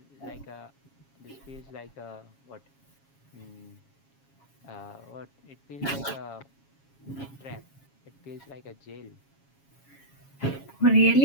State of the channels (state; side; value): late; right; 7.3 ms